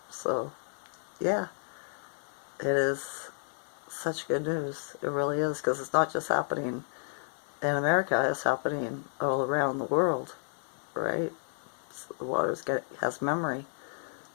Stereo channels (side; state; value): right; silent; 57 dB below the other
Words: So yeah, it is such good news. It really is, because it's not just happening in America, it's happening all around the world, right? So the water has memory,